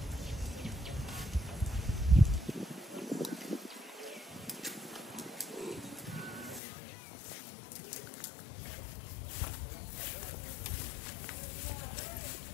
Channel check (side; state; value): right; drops out; at 6.6 s